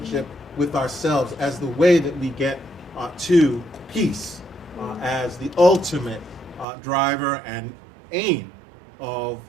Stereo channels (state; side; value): drops out; left; at 6.7 s